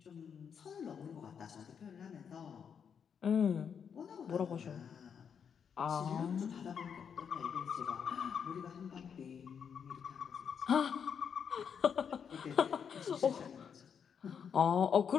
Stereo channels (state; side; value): quieter; right; 7.2 dB